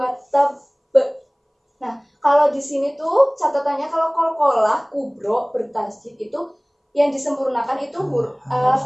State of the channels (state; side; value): identical; both; correlation 1.00